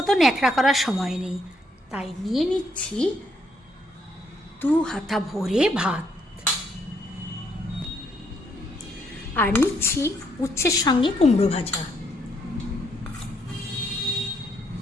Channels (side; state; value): both; normal; correlation 0.72